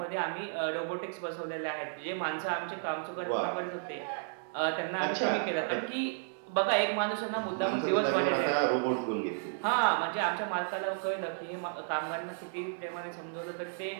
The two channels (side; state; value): left; silent; digital silence